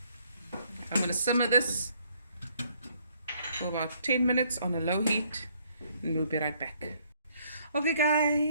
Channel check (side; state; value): both; inverted; correlation -0.66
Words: I'm going to simmer this for about 10 minutes on a low heat and we'll be right back. Okay